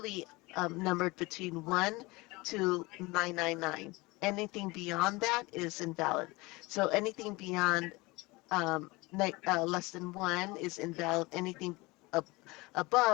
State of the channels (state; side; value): quieter; right; 23.4 dB